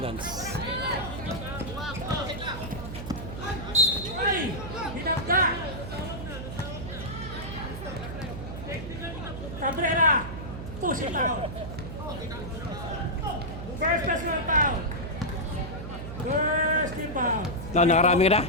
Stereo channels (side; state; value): right; noise; hum, 8 dB below the sound